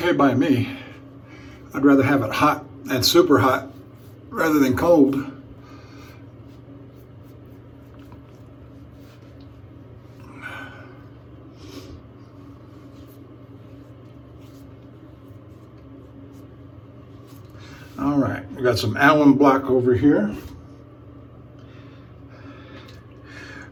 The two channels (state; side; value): identical; both; correlation 1.00